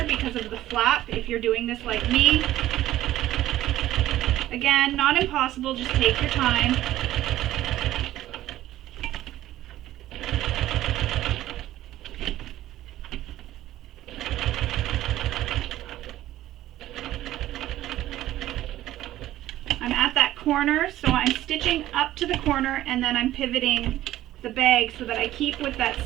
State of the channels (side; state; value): left; quieter; 14.2 dB